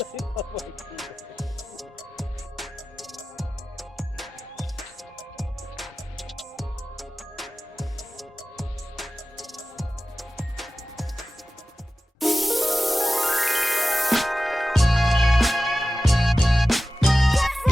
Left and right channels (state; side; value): normal; both; correlation 0.95